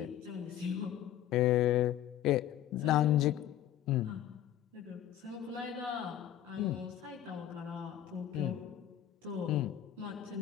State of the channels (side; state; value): right; quieter; 11.6 dB